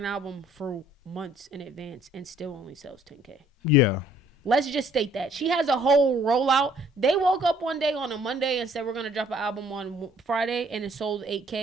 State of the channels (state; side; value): normal; both; correlation 0.60